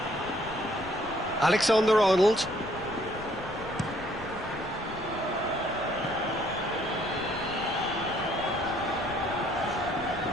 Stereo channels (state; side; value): noise; left; rumble, 16 dB below the sound